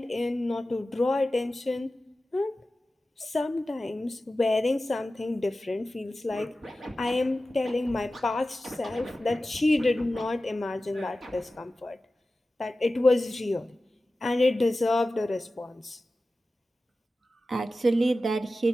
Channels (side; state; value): both; normal; correlation 0.95